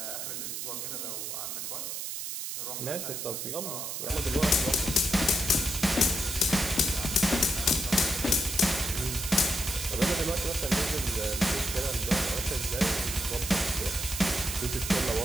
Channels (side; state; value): right; noise; hiss, 5 dB below the sound